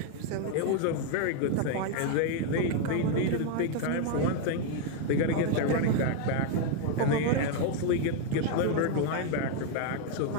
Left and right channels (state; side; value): different; both; correlation 0.00